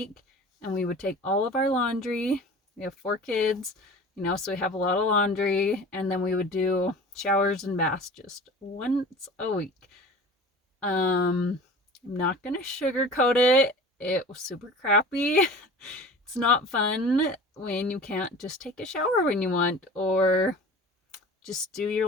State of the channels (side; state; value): both; normal; correlation 0.39